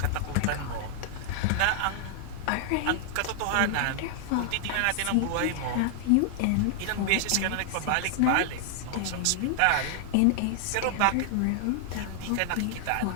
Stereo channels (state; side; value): different; both; correlation 0.00